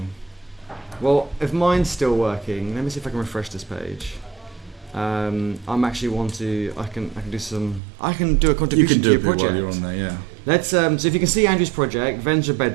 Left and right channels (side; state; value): left; drops out; at 7.8 s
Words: Well, if mine's still working, let me see if I can refresh this page. I'm actually I can do a contribution to your project. While you're on there, yeah. Let's so if you can see Andrew's project,